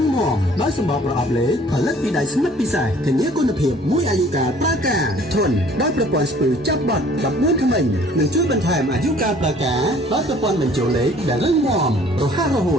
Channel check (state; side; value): normal; both; correlation 0.55